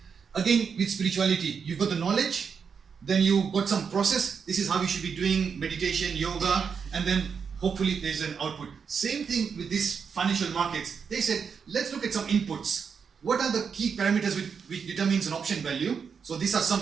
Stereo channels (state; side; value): quieter; left; 6.3 dB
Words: Again, with spirituality, you've got the knowledge, then you've got some process. This is how you should be doing meditation, yoga, and then hopefully there's an output. Same thing with these financial markets. They said, let's look at some inputs. What are the key parameters which determines an option value? So these are some